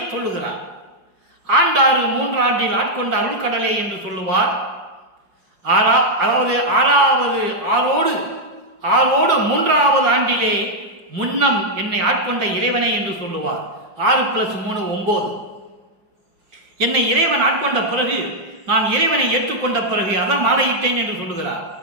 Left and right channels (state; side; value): late; left; 5.3 ms